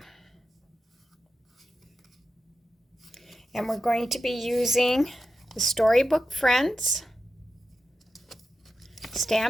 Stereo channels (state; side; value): normal; both; correlation 0.90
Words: And we're going to be using the Storybook Friends